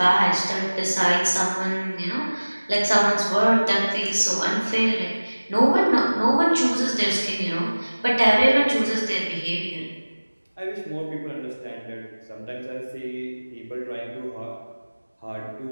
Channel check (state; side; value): inverted; both; correlation -1.00